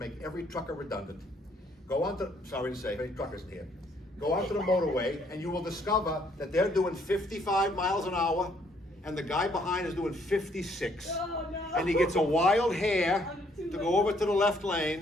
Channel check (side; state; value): both; normal; correlation 0.66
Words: every trucker redundant. Go on to, sorry to say, any truckers here. Go onto the motorway and you will discover that they're doing 55 miles an hour and the guy behind is doing 56. Oh, no. And he gets a wild hair to go over to the left